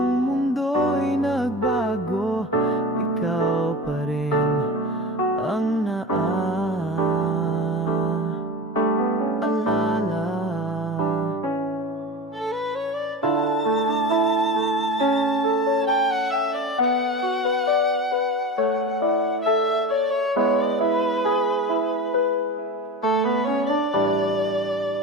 mundo'y nagbago, ikaw pa rin ang naaalala.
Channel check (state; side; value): normal; both; correlation 0.31